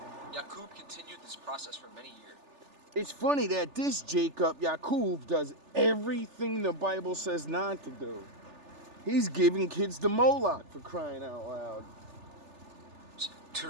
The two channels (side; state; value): left; late; 3.4 ms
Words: Yakub continued this process for many years. It's funny that this Jacob, Yakub, does everything the Bible says not to do. He's giving kids the Moloch, for crying out loud.